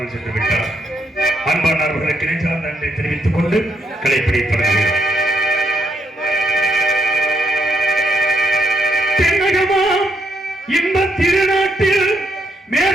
சென்று விட்டார். அன்பானவர்களுக்கு நெஞ்சார்ந்த நன்றி தெரிவித்துக் கொண்டு கலைப்பிடி தொடங்குகிறோம். தென்னகமாம் இந்த திருநாட்டில்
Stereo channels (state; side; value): normal; both; correlation 0.76